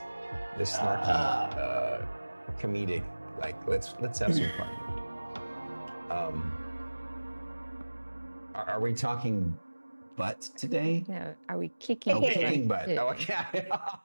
snarky, comedic. Like, let's have some fun. Are we talking butt today? No, are we kicking? Oh, kicking butt. Yeah. Oh, okay. I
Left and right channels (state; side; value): inverted; both; correlation -1.00